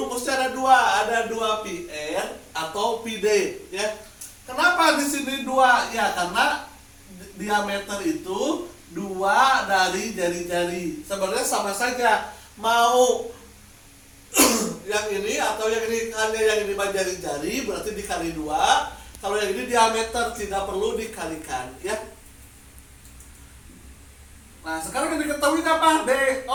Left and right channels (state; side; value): identical; both; correlation 1.00